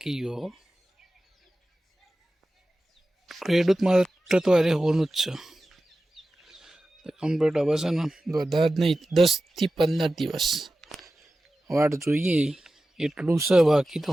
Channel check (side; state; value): both; normal; correlation 0.94